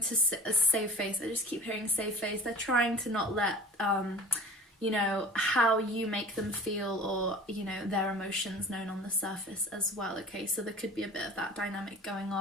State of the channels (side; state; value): both; normal; correlation 0.39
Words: save face. I just keep hearing save face. They're trying to not let you know, how you make them feel, or, you know, their emotions known on the surface as well, okay? So there could be a bit of that dynamic going